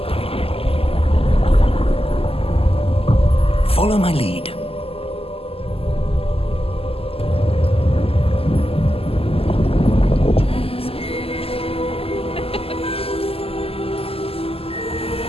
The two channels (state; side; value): late; right; 0.28 ms